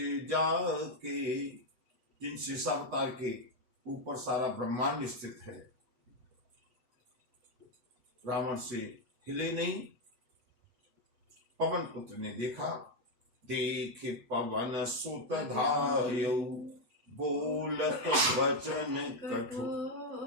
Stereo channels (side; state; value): left; late; 8.2 ms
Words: जाके, जिन शेषावतार के ऊपर सारा ब्रह्मांड स्थित है, रावण से हिले नहीं। पवन पुत्र ने देखा, देख पवन सुत धायौ, बोलत वचन कठोर।